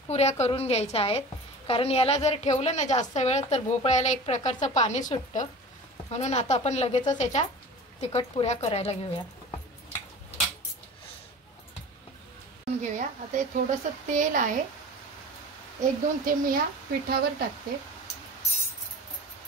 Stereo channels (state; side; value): normal; both; correlation 0.37